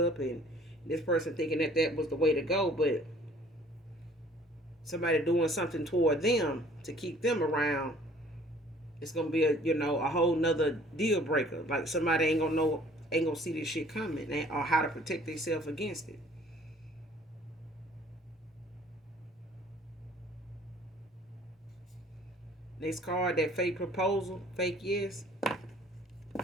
and this person thinking that was the way to go. But somebody doing something toward them to keep them around, it's gonna be a whole nother deal breaker. Like somebody ain't gonna see this shit coming, or how to protect themselves against it. Next card, that fake proposal, fake yes.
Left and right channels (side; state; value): both; normal; correlation 0.55